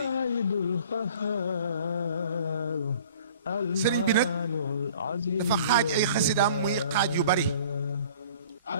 yi sëriñ bi nag dafa xaaj ay xasidaam muy xaaj yu bari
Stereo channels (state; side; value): inverted; both; correlation -0.49